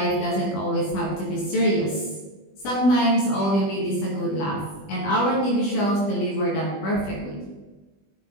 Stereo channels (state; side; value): late; right; 20 ms